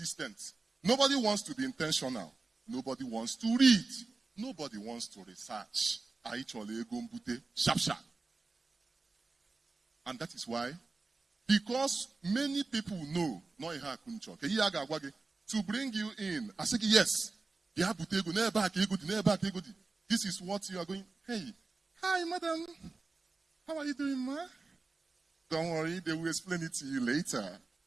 Nobody wants to be intentional. Nobody wants to read. Nobody wants to research. Sharp, sharp. And that is why, because many people know, to bring you in, I say, yes, this is what you are going. Hey, hi, madam. How are you doing, ma? Don't worry, they will explain it to you later.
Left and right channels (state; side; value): quieter; left; 3.8 dB